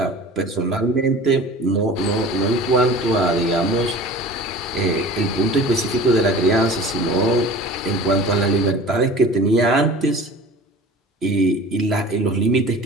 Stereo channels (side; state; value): both; normal; correlation 0.41